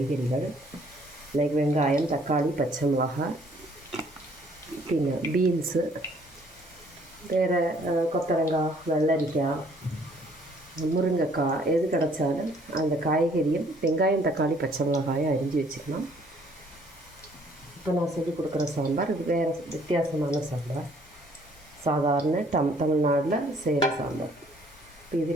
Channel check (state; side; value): normal; both; correlation 0.61